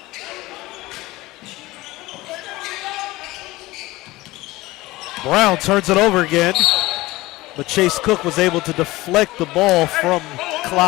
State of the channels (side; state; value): right; quieter; 19.3 dB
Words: Brown turns it over again, but Chase Cook was able to deflect the ball from